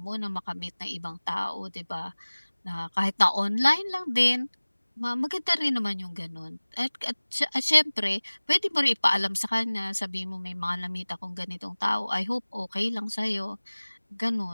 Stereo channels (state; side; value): inverted; both; correlation -1.00